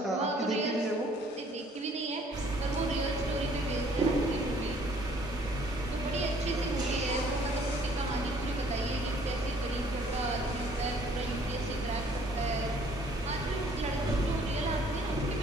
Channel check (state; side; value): normal; both; correlation 0.59